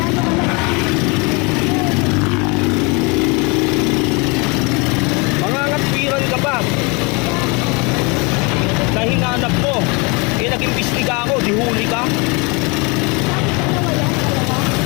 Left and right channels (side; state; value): right; quieter; 29.5 dB